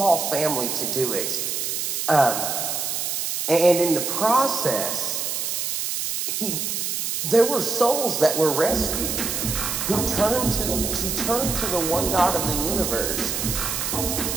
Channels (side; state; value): right; noise; hiss, 2 dB below the sound